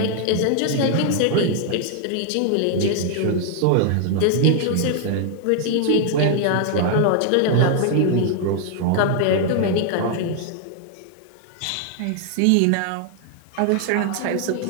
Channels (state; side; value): different; both; correlation 0.00